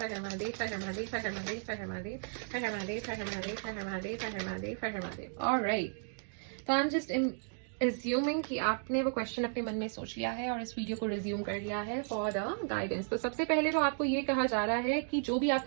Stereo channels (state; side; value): silent; left; digital silence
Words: Har Har Mahadev, Har Har Mahadev, Har Har Mahadev, Har Har Mahadev, Har Har Mahadev, Har Har Mahadev, Har Har Mahadev, Har Har Mahadev, Har Har Mahadev, alright. तो आई एम जस्ट एज्यूमिंग कि आपने वो क्वेश्चन अपने मन में सोच लिया है और इस वीडियो को रिज्यूम कर लिया है फॉर द गाइडेंस। तो सबसे पहले तो आपको ये कहा जा रहा है कि जो भी